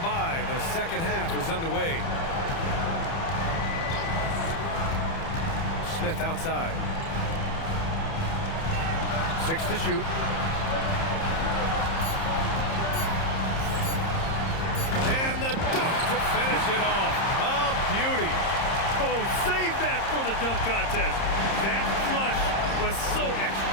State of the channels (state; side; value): late; right; 30 ms